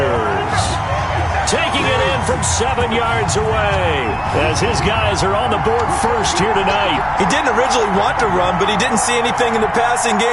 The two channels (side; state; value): both; identical; correlation 1.00